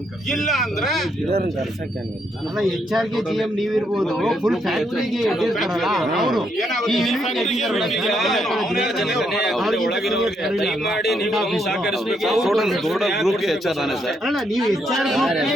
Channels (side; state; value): both; normal; correlation 0.76